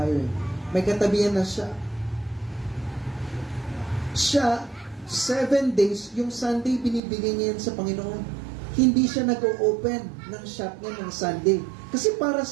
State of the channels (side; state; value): left; drops out; at 7.0 s